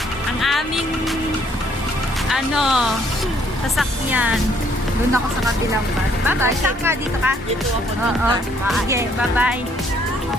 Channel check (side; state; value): both; normal; correlation 0.65